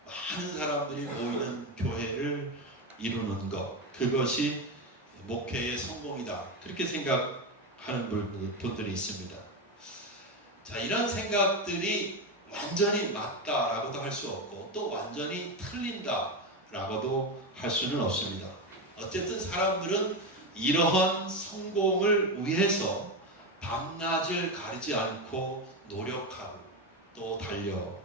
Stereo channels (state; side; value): normal; both; correlation 0.14